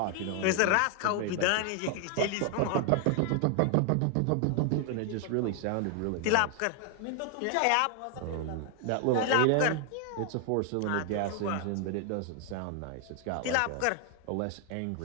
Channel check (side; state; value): both; different; correlation 0.00